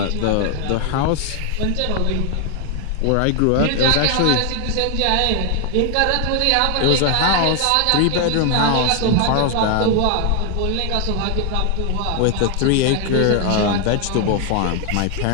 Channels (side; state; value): both; different; correlation 0.00